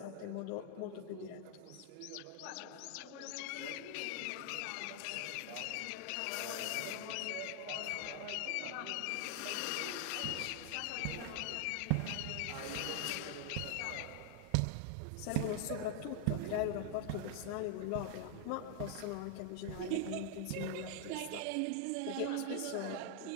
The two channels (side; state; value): both; different; correlation 0.00